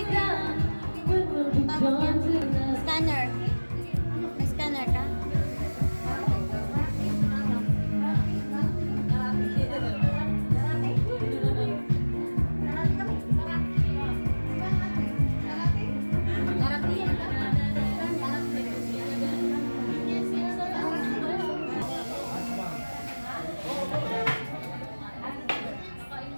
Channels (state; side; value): inverted; both; correlation -1.00